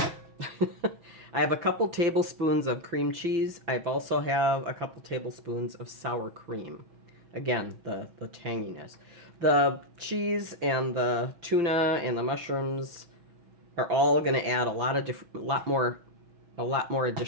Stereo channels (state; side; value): late; left; 5.9 ms